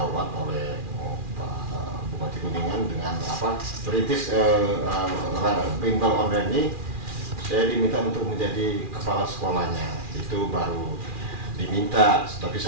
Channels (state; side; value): late; left; 2.4 ms